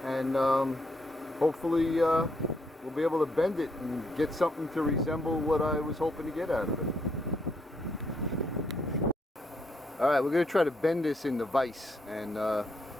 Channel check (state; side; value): normal; both; correlation 0.75